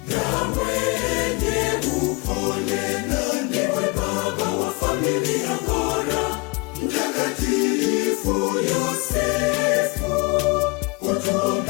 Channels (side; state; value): right; quieter; 27.6 dB